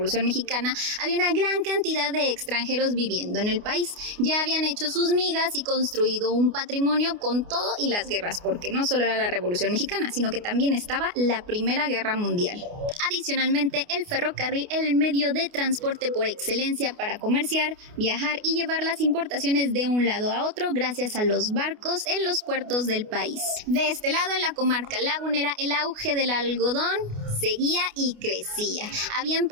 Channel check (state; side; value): late; left; 29 ms